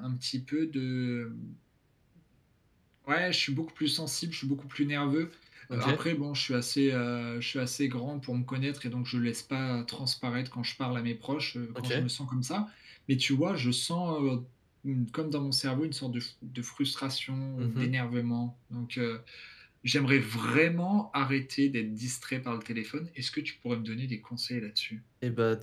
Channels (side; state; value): both; identical; correlation 1.00